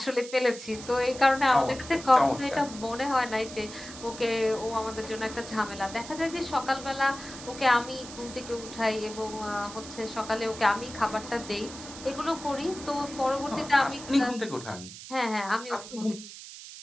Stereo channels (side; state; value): right; noise; hiss, 13 dB below the sound